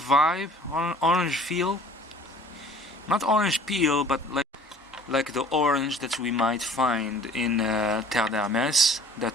orange feel. Not orange peel, but like the orange that we might find in Terre d'Hermès,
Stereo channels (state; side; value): normal; both; correlation 0.49